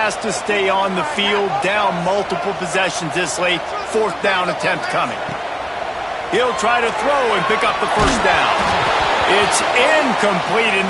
to stay on the field, down multiple possessions this late. 4th down attempt coming. He'll try to throw and pick up the 1st down. It's incomplete, and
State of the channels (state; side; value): identical; both; correlation 1.00